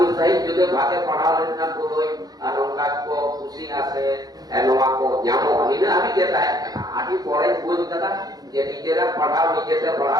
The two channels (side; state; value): left; late; 0.19 ms